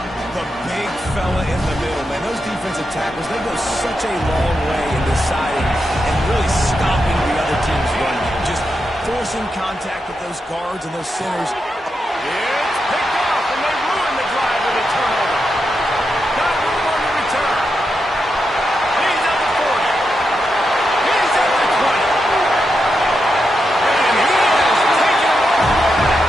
The big fella in the middle, man. Those defensive tackles, they go such a long way in deciding and really stopping the other team's run. Just forcing contact with those guards and those centers. It's picked off, and they ruin the drive with a turnover. Got room on the return. He's at the 40. He's at the 20. And he has taken it all the way.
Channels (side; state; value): both; normal; correlation 0.86